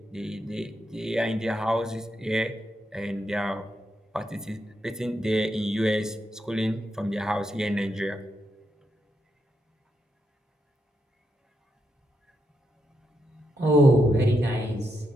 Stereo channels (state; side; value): normal; both; correlation 0.83